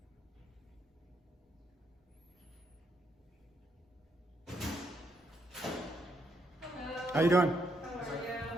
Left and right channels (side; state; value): both; normal; correlation 0.76